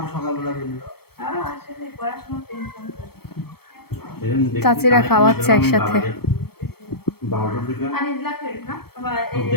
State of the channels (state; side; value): late; right; 0.96 ms